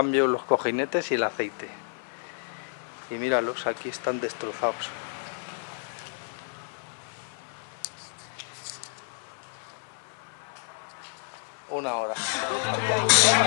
los cojinetes y el aceite. Y míralos, aquí están destrozados. Una hora.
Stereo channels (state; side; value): silent; right; 58 dB below the other